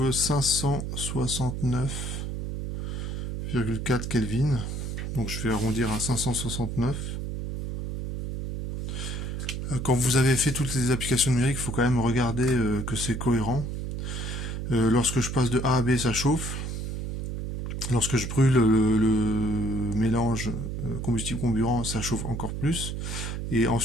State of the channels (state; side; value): noise; right; hum, 4 dB below the sound